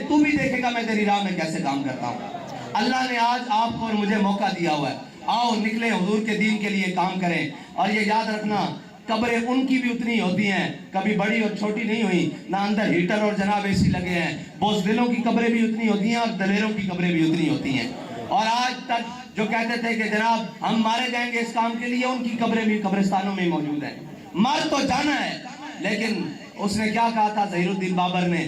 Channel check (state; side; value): identical; both; correlation 1.00